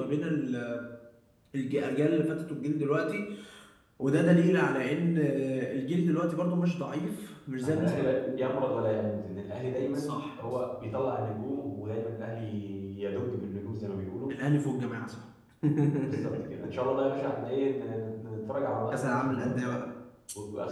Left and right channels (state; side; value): identical; both; correlation 1.00